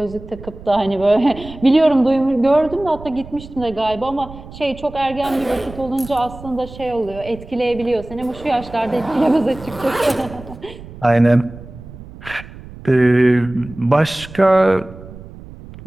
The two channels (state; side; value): noise; right; rumble, 16 dB below the sound